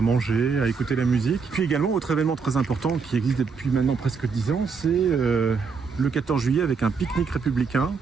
à écouter la musique. Puis également, autre événement très important qui existe depuis maintenant presque 10 ans, c'est le 14 juillet avec un pique-nique républicain.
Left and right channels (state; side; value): quieter; left; 5.3 dB